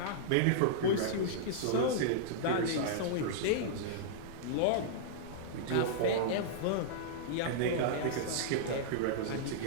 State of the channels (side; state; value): both; different; correlation -0.02